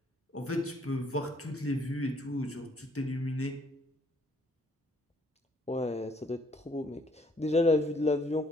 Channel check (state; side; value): normal; both; correlation 0.66